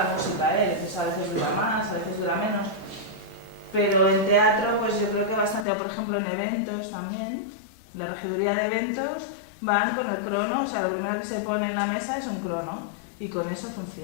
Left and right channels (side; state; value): right; drops out; at 5.7 s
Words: música. A veces dura más, a veces dura menos. Pero en teatro, pues yo creo que bastante, por ejemplo, en eventos también, la regiduría de eventos van con el crono, o sea, lo primero que se pone en la mesa es un crono, y con eso